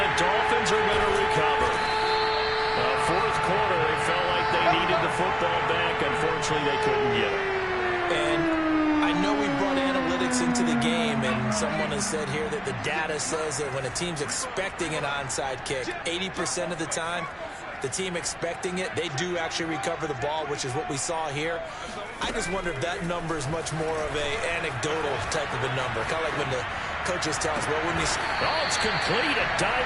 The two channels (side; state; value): both; identical; correlation 1.00